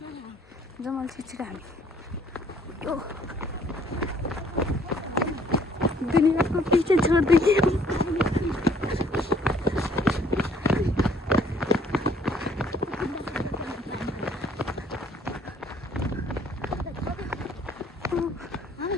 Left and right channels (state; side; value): normal; both; correlation 0.61